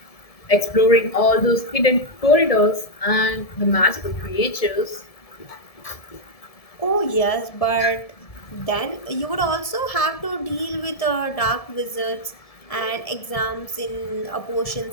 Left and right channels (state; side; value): late; right; 1.7 ms